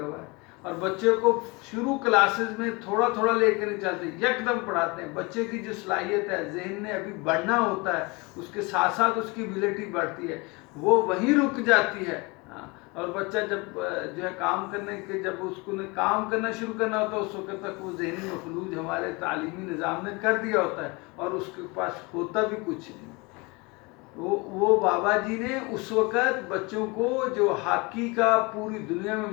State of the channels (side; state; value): right; quieter; 26.8 dB